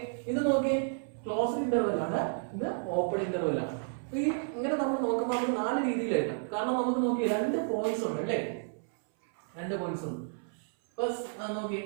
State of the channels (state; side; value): silent; left; 57 dB below the other